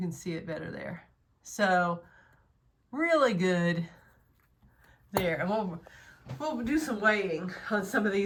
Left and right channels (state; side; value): identical; both; correlation 1.00